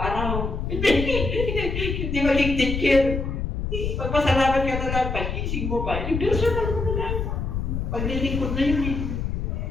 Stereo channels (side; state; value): left; noise; rumble, 2 dB below the sound